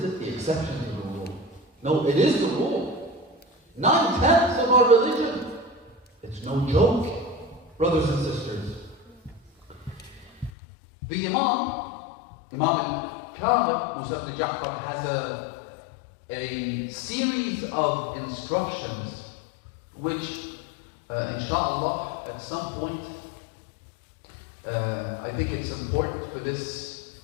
it the exception to the rule? No, it is the rule. 9/10 of our religion. It's no joke, brothers and sisters. The Imam al-Kamil, Musa ibn Ja'far, has a series of instructions which, inshallah, at some point, I think it's important for this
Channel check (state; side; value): drops out; right; at 10.5 s